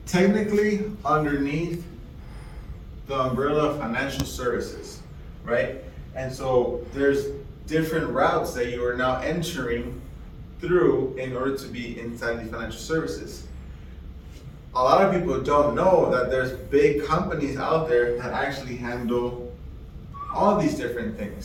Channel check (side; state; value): both; identical; correlation 1.00